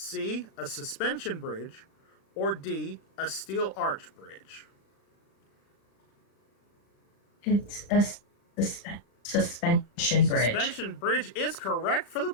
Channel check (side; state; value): right; late; 36 ms